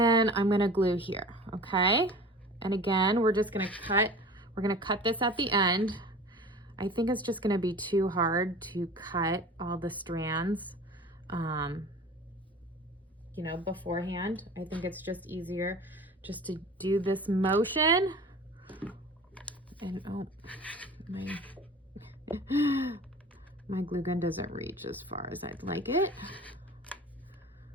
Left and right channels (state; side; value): normal; both; correlation 0.40